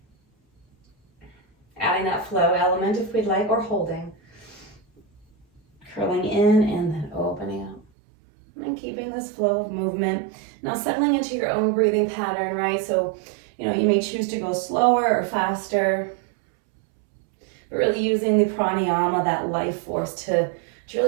Adding that flow element if we'd like, or holding. Curling in and then opening up. And keeping this flow of movement. Now settling into your own breathing pattern, right? So, you may choose to go slower or faster. But really using the pranayama, that life force, to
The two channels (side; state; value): left; drops out; at 7.9 s